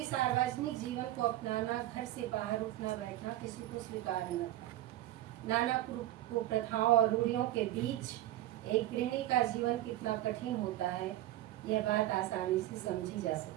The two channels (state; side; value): quieter; left; 14.6 dB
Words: सार्वजनिक जीवन को अपनाना, घर से बाहर उठना बैठना किसी को स्वीकार न था। नाना कुप्रथाओं और रूढ़ियों के बीच एक गृहिणी का जीवन कितना कठिन होता है, यह बात आसानी से समझी जा